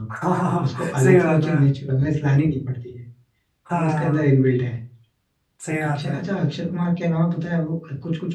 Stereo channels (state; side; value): identical; both; correlation 1.00